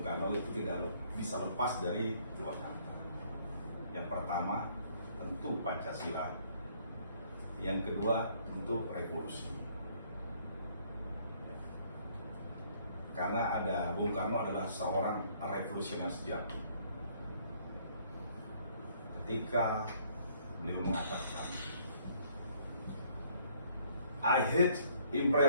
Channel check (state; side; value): inverted; both; correlation -0.63